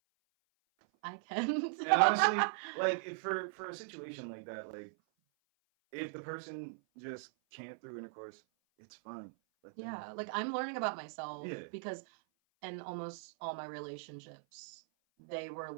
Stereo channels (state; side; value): silent; left; 52 dB below the other